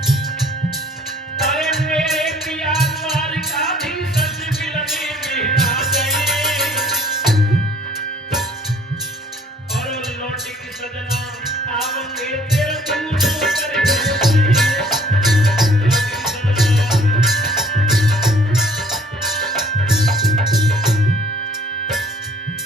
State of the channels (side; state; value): both; normal; correlation 0.57